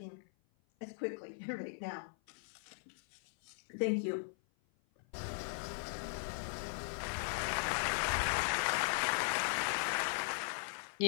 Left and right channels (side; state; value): right; silent; 52 dB below the other